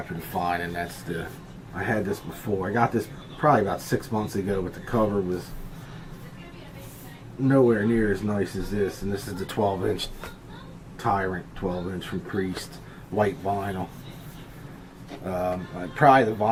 to find, and that's I had this before. I got this probably about 6 months ago, but the cover was nowhere near as nice as this. And this is the 12-inch Tyrant 12-inch from Priest, white vinyl. Probably the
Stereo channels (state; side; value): identical; both; correlation 1.00